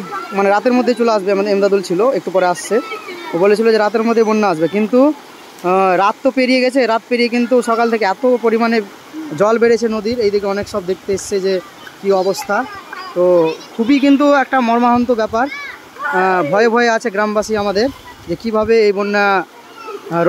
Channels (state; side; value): identical; both; correlation 1.00